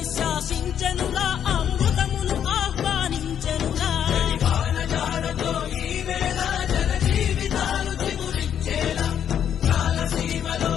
శాసించెనుగా అమృతమును ఆహ్వానించెనుగా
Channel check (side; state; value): right; quieter; 9.1 dB